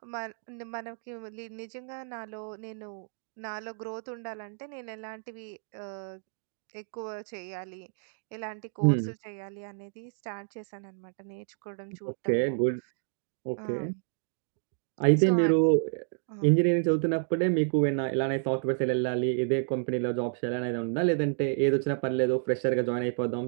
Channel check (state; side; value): silent; left; digital silence